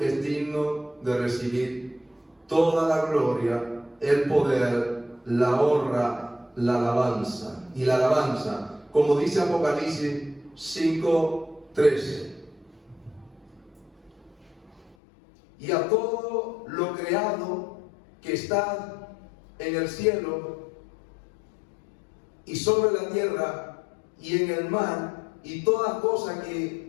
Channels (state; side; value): drops out; right; at 15.0 s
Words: es digno de recibir toda la gloria, el poder, la honra, la alabanza. Y la alabanza, como dice Apocalipsis 5:13. Y a todo lo creado que está en el cielo y sobre la tierra y en el mar y toda cosa